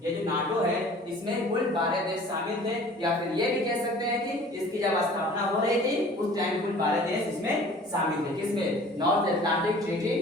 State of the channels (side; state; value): both; normal; correlation 0.47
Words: ये जो नाटो है इसमें कुल 12 देश शामिल थे, या फिर ये भी कह सकते हैं कि इसकी जब स्थापना हो रही थी उस टाइम कुल 12 देश इसमें शामिल थे। किसमें, नॉर्थ अटलांटिक ट्रीटी